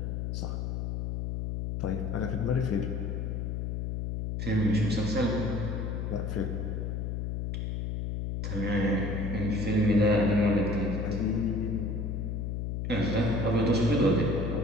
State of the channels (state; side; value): noise; left; hum, 2 dB below the sound